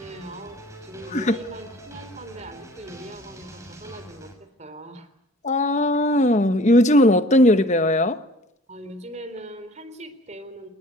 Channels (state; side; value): normal; both; correlation 0.50